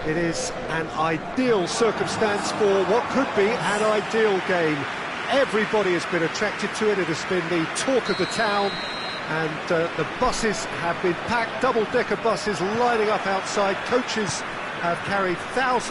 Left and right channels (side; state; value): both; identical; correlation 1.00